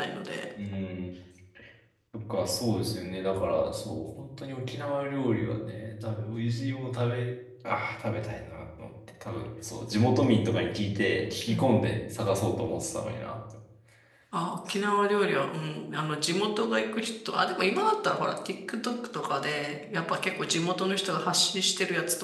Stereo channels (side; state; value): both; identical; correlation 1.00